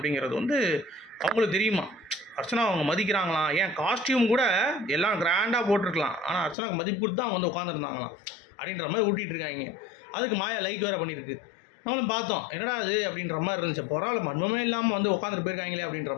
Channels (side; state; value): right; drops out; at 6.6 s